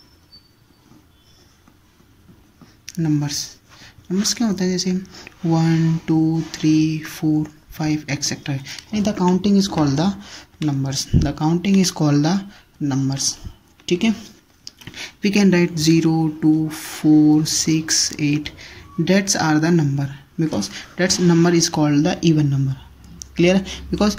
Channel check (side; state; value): both; identical; correlation 1.00